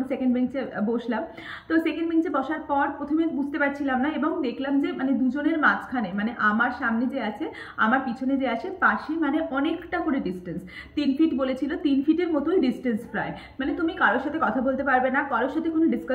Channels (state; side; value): identical; both; correlation 1.00